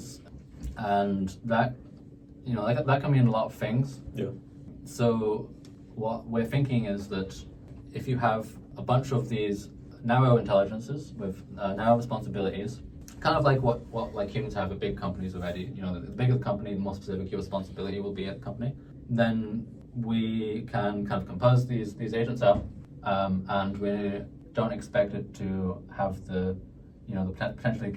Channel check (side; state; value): both; identical; correlation 1.00